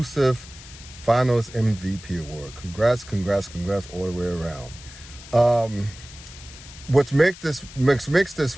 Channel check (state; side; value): noise; left; hiss, 17 dB below the sound